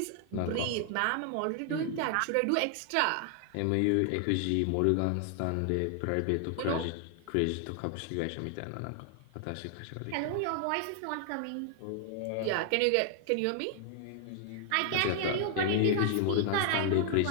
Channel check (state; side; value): different; both; correlation 0.00